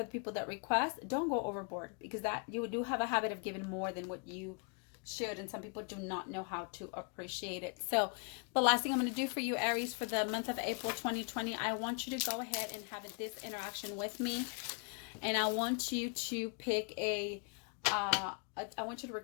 the people that request. Don't go overboard, because that you do have a habit of giving more than what you should, and some people do not know how to appreciate it. So the last thing I'm going to do for you, Aries, for the month of April 2020, I want you to go ahead and have this interaction with me, and I want you to pick I want you to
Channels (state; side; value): quieter; right; 37.3 dB